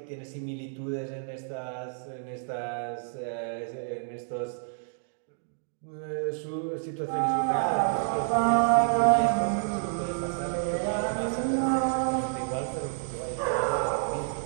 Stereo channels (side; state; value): left; silent; digital silence